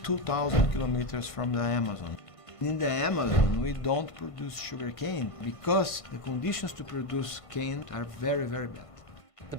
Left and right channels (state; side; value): late; right; 1.5 ms